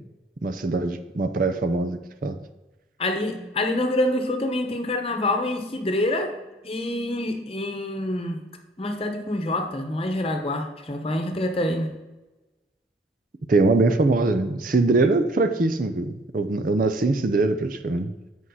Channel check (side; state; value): both; normal; correlation 0.56